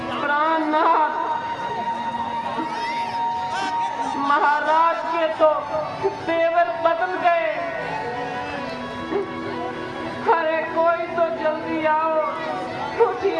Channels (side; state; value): both; identical; correlation 1.00